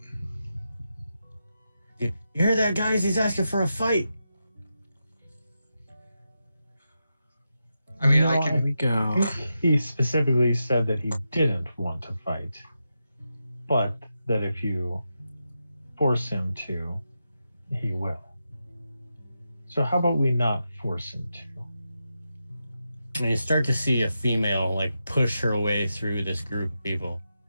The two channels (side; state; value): both; inverted; correlation -0.88